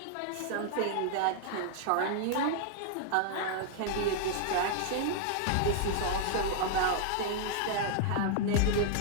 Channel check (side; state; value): both; different; correlation 0.00